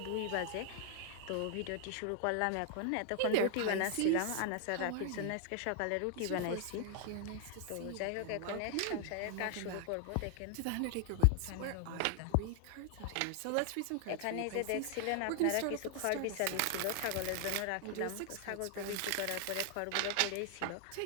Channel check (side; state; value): both; different; correlation 0.00